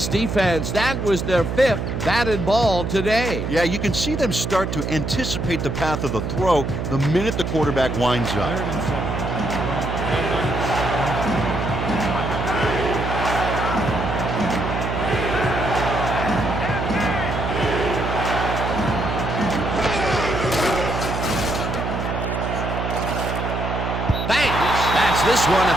defense. That was their 5th batted ball today. Yeah, you can see them start to anticipate the path of the throw the minute the quarterback winds up. 3rd and 7. This one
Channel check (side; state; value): right; noise; hum, 3 dB below the sound